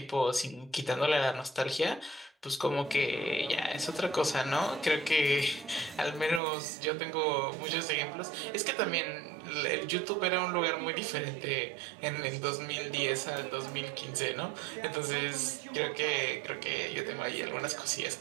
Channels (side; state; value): left; drops out; at 6.4 s